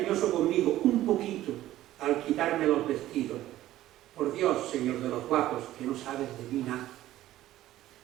conmigo un poquito al quitarme los vestidos. Por Dios, señor de los guapos, que no sabes de mí nada.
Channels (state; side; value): quieter; left; 14.4 dB